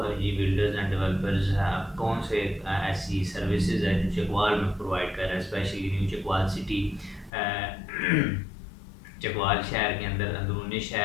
बिल्डर्स एंड डेवलपर्स कौन से ऐसी सर्विसेज है जो चकवाल में प्रोवाइड कर रहा है, specially new Chakwal city, Chakwal शहर के अंदर, अंदरूनी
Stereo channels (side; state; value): right; drops out; at 7.3 s